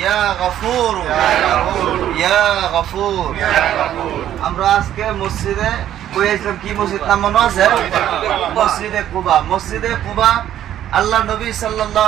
غفور يا غفور আমরা আজকে মসজিদে কইছিলাম কি মসজিদ নাম মনে আছে মসজিদে কুবা আল্লাহ নবী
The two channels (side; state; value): left; quieter; 11.5 dB